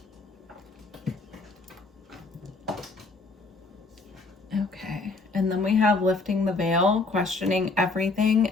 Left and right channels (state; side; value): quieter; right; 3.6 dB